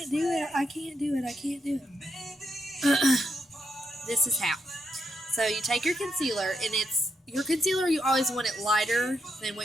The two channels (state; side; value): normal; both; correlation 0.81